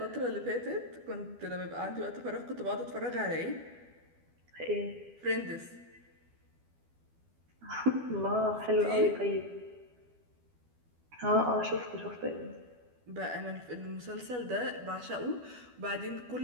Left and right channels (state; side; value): late; left; 12 ms